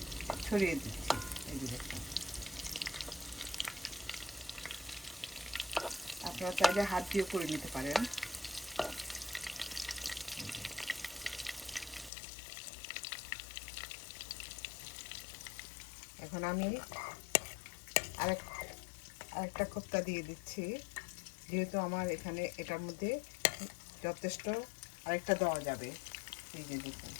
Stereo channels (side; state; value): right; drops out; at 12.1 s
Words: ছড়িয়ে দিচ্ছি। এই যে দেখুন, আপনারা চাইলে হাত দিয়েও করে নিতে পারেন। এখন আমি আরেকটা কোপ্তা দিয়ে দিচ্ছি, যেহেতু আমার এখানে এটার মধ্যে যথেষ্ট আরেকটা দেওয়া যাবে। এই যে দেখুন,